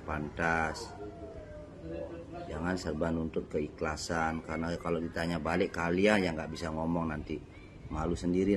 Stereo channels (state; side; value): identical; both; correlation 1.00